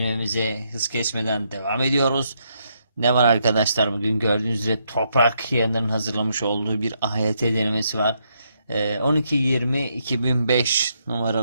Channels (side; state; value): both; inverted; correlation -0.77